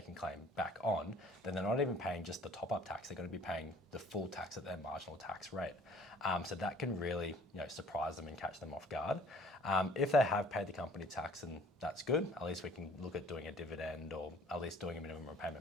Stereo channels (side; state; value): both; normal; correlation 0.54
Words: claim back on, then they're not even paying just the top-up tax. They're going to be paying the full tax at their marginal tax rate. So that can really surprise them and catch them off guard. If they have paid the company tax, and that's good, at least we can look at doing a dividend or at least doing a minimum